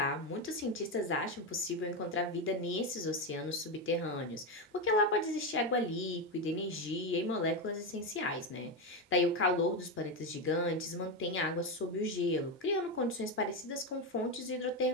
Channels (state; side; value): normal; both; correlation 0.11